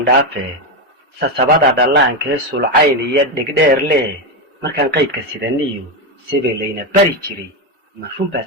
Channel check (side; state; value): both; normal; correlation 0.10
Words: sasabada dhallaankee sulcayn iyo dhigdheer leh markaan qaydka sidaniyo sebelayna bari jiray marfun